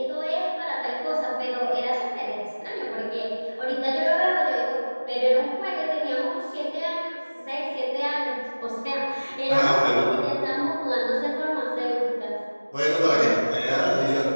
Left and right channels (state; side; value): inverted; both; correlation -1.00